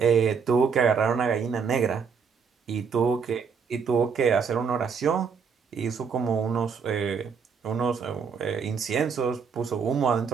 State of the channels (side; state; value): left; quieter; 6.1 dB